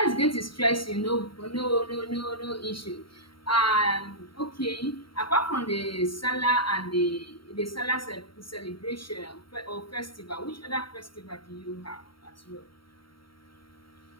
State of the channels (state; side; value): late; right; 0.74 ms